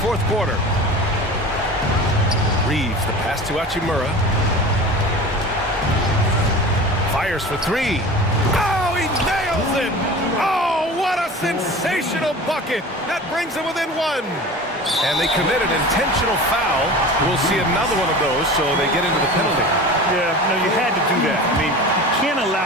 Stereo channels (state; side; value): normal; both; correlation 0.36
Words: quarter. Reeves, the pass to Achimura. Fires for 3. Oh, he nails it! Oh, what a sensational bucket! That brings them within 1. And they committed intentional foul. We'll see another one of those, so they get into the penalty. Yeah, no, you had to do that. I mean, you can't